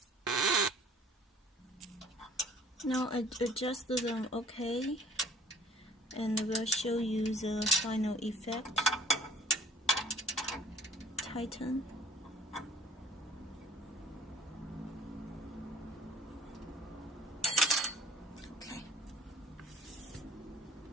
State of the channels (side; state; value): both; normal; correlation 0.52